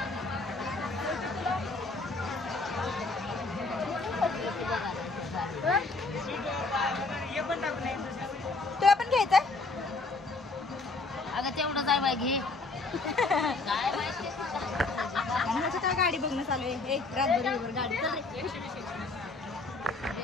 तुला पण घ्यायचंय. अगं तेवढं जाय बाय घे. काय गाडी बघणं चालू आहे. एक रातभर गाडी चल रे.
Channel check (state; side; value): quieter; right; 3.6 dB